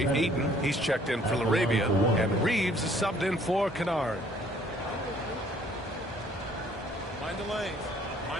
Ayton, he's checked in for Laravia. And Reeves is subbed in for Kennard. Mind the lanes.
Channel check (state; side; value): normal; both; correlation 0.60